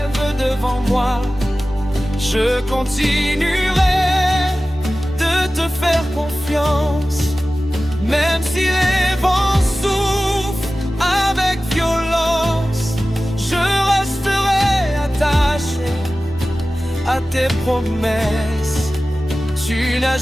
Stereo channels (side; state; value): both; normal; correlation 0.96